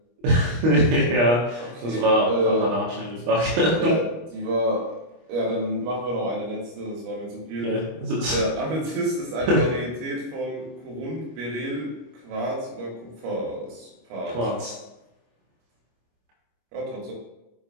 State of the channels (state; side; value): late; left; 25 ms